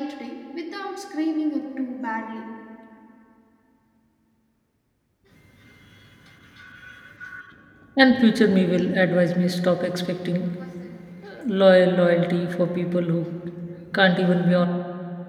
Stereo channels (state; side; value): identical; both; correlation 1.00